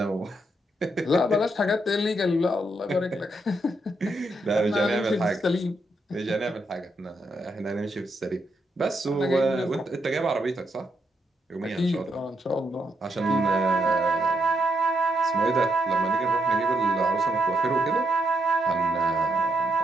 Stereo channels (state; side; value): normal; both; correlation 0.79